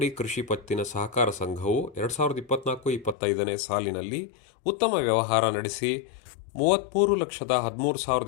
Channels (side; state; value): right; drops out; at 3.2 s